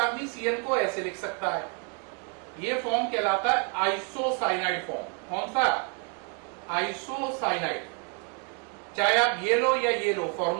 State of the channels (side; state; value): left; quieter; 36.1 dB